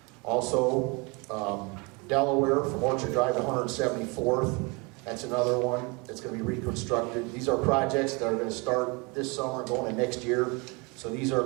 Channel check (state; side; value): quieter; left; 29.0 dB